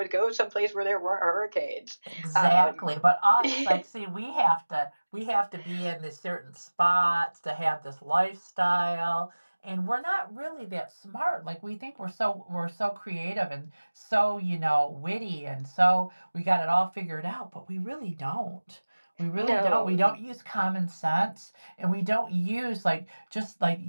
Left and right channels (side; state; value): both; inverted; correlation -1.00